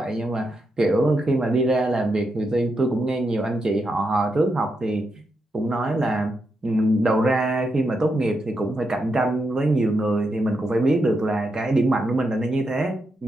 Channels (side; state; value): both; normal; correlation 0.84